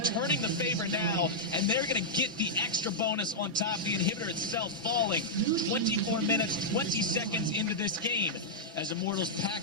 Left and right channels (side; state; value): both; normal; correlation -0.08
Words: the favor now, and they're going to get the extra bonus on top of the inhibitor itself falling. 24 minutes, 20 seconds into this game. As Immortals